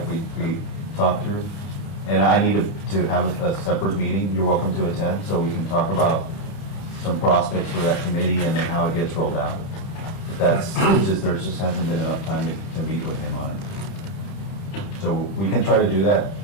we talked through. And I need to have a separate meeting. You're welcome to attend, so we can talk about some prospects for that committee and then how it gets rolled out. That's, it's just, there just hasn't been enough time to meet with him on it. So we can try to do that.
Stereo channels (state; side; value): late; right; 30 ms